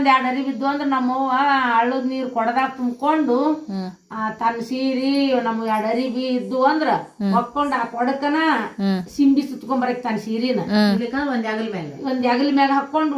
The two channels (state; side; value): identical; both; correlation 1.00